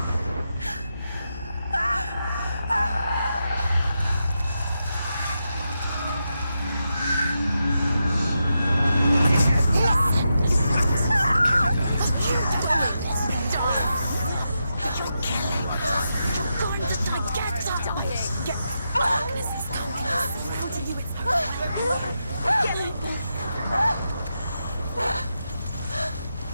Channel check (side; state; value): both; inverted; correlation -0.86